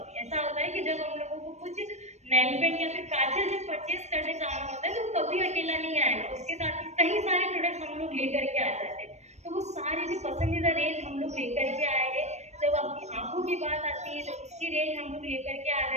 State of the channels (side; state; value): left; late; 0.32 ms